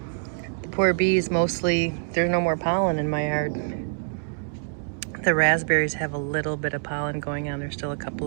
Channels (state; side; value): silent; left; digital silence